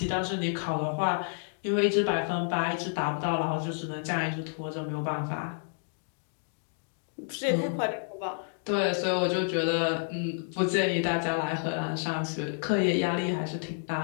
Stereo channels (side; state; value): right; silent; digital silence